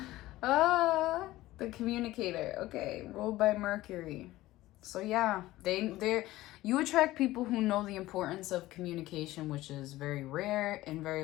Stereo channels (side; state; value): right; quieter; 16.9 dB